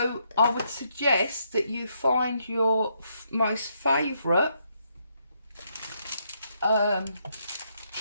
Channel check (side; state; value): both; inverted; correlation -0.76